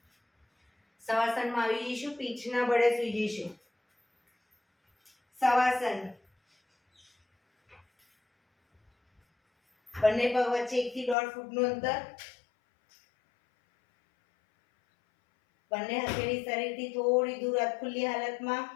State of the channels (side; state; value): right; drops out; at 11.2 s